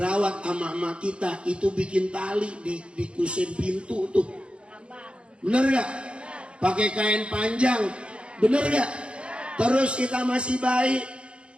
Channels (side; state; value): left; late; 0.057 ms